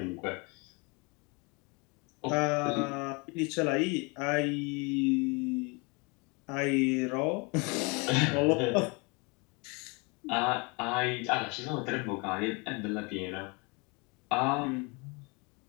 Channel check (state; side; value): quieter; right; 29.5 dB